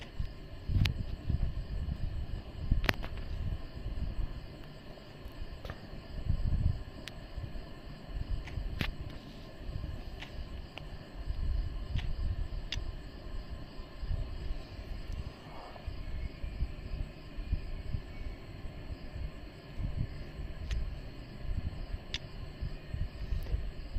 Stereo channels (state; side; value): identical; both; correlation 1.00